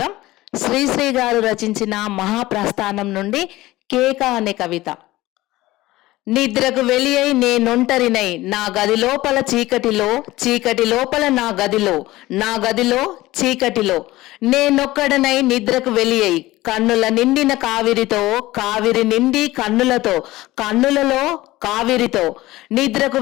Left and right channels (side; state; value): right; quieter; 17.9 dB